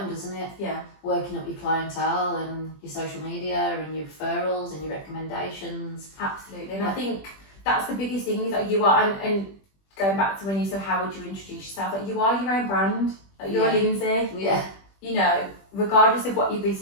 doesn't it? Yeah. Working up your clientele and your social media and your referrals and your recommendations. Absolutely. And I think that's the biggest thing, is that you are, and going back to when you said, how would you introduce yourself? Like, you are your own brand. Like, you're Lindsay. Yeah. You know, regardless of what your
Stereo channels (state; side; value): late; right; 20 ms